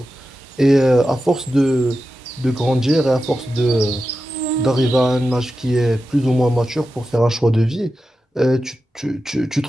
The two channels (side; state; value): both; normal; correlation 0.91